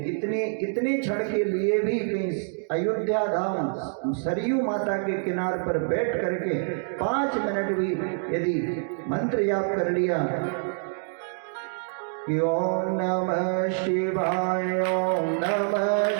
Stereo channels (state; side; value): silent; left; digital silence